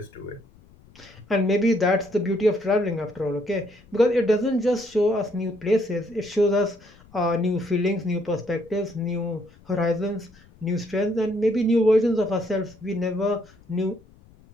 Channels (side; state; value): left; noise; rumble, 27 dB below the sound